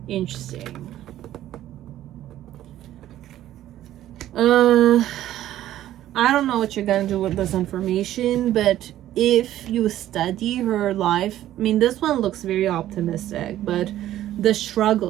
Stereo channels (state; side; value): quieter; left; 13.0 dB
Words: Interesting. I don't know what you're gonna do with this information, but if you study her life, I mean, this one looks very optimistic, but the